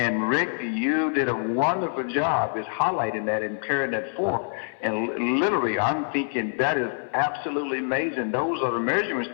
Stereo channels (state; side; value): silent; right; 59 dB below the other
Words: Rick, you did a wonderful job is highlighting that and carrying that forth. And literally, I'm thinking that is absolutely amazing. Those are the measurement